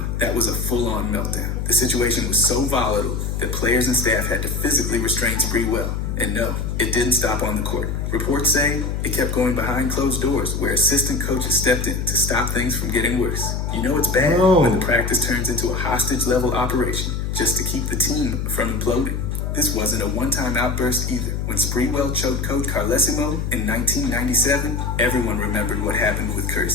That was a full-on meltdown. The situation was so volatile that players and staff had to physically restrain Sprewell. And no, it didn't stop on the court. Reports say it kept going behind closed doors where assistant coaches stepped in to stop things from getting worse. You know it's bad when the practice turns into a hostage-level operation just to keep the team from imploding. This wasn't a one-time outburst either. When Sprewell choked Coach Carlesimo in 1997, everyone remembered what happened with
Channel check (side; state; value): left; noise; hum, 2 dB below the sound